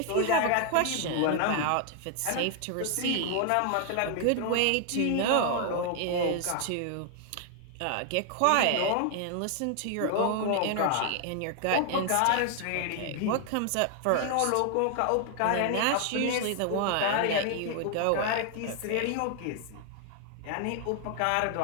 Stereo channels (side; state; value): both; different; correlation 0.00